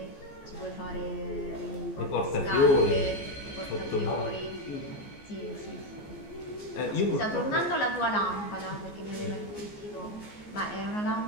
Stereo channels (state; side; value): late; right; 14 ms